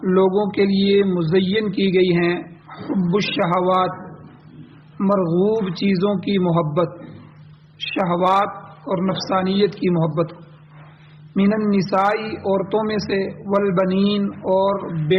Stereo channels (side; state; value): both; identical; correlation 1.00